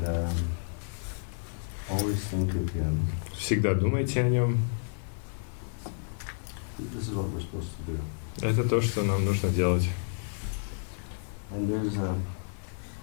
always think of Him. Всегда думайте о Нем. This is what we're supposed to do. Это то, что нам нужно делать. And there's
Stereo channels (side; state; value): right; silent; 58 dB below the other